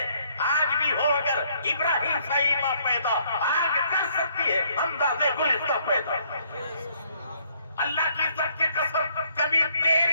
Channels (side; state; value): both; inverted; correlation -0.67